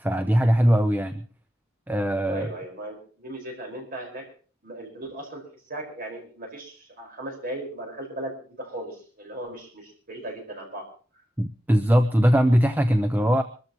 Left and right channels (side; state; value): both; normal; correlation 0.91